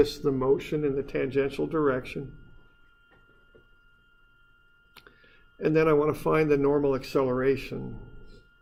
the motion in the tangential direction. And then I want to find the normal acceleration.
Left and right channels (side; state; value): both; identical; correlation 1.00